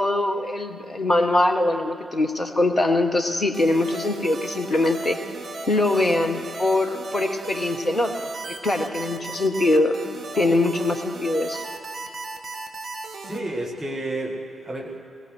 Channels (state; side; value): normal; both; correlation 0.83